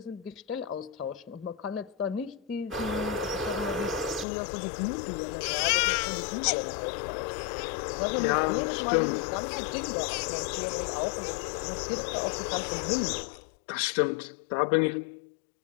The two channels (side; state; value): right; drops out; at 4.2 s